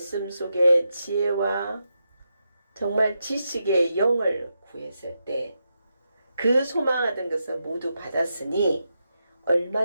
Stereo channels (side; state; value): both; inverted; correlation -0.86